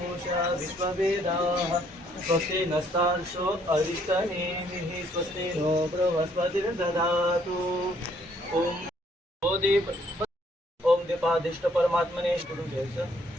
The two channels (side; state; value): both; normal; correlation 0.66